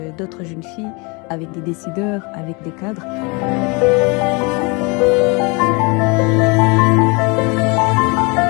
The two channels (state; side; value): quieter; right; 29.4 dB